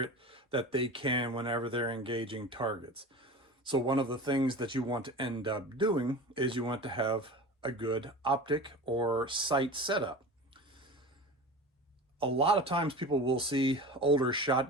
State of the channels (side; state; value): both; normal; correlation 0.33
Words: that they can whenever they're engaging targets. So one of the things that you want to end up doing is you want to have a good optic or sight setup. A lot of times people will see older